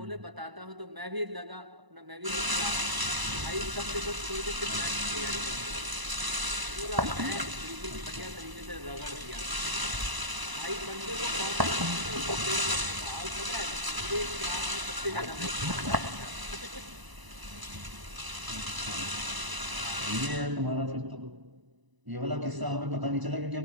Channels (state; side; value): late; left; 1.0 ms